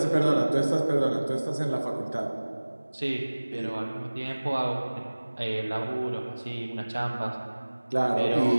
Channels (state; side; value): inverted; both; correlation -1.00